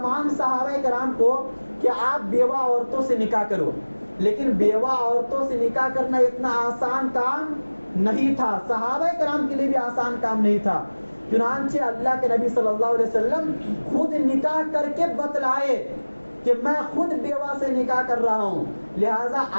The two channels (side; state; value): both; inverted; correlation -1.00